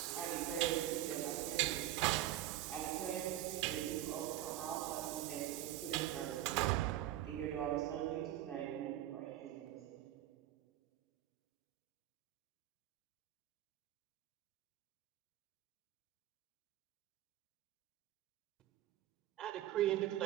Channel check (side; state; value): left; quieter; 13.4 dB